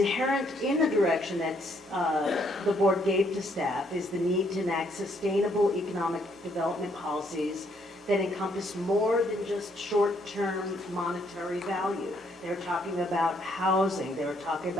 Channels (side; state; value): both; normal; correlation 0.70